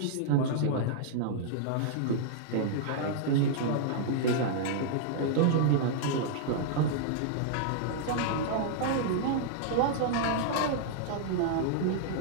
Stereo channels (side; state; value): both; different; correlation -0.01